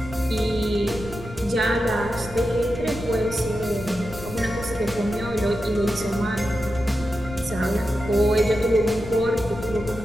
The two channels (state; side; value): noise; left; rumble, 13 dB below the sound